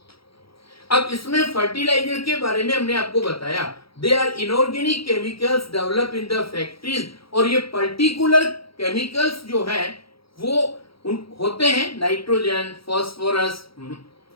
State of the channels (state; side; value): late; right; 0.75 ms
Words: अब इसमें फर्टिलाइजर के बारे में हमने आपको बताया. They are inorganic chemicals develop in the factories. और ये पर्टिकुलर केमिकल्स जो है वो होते हैं नाइट्रोजन,